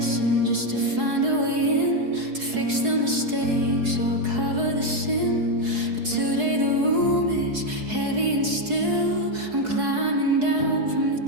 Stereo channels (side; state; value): left; late; 4.7 ms